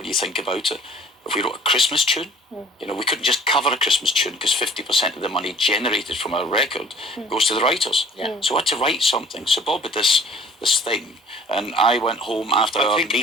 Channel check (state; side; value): normal; both; correlation 0.51